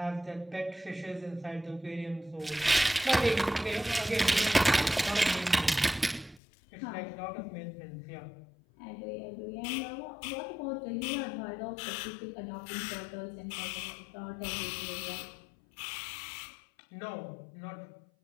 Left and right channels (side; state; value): right; drops out; at 6.4 s